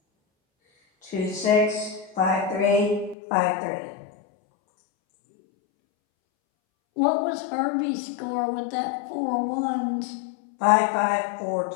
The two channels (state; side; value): drops out; right; at 3.2 s